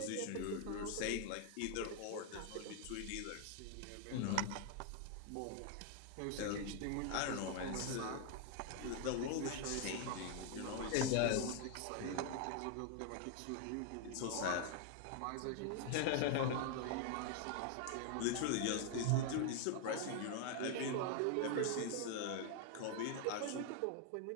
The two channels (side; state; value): both; different; correlation 0.00